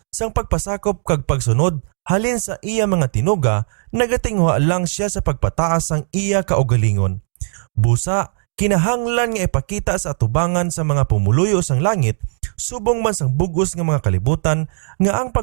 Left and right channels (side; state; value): left; silent; 67 dB below the other